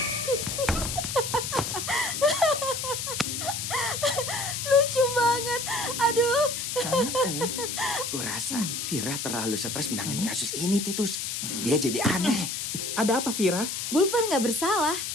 Lucu banget. Aduh. Kurasa Vira terlalu stres menangani kasus ini, Titus. Dia jadi aneh. Ada apa, Vira? Bulpan nggak bersalah.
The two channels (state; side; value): noise; left; hiss, 3 dB below the sound